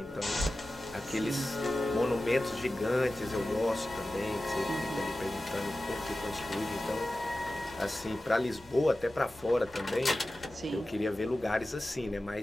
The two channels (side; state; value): both; normal; correlation 0.95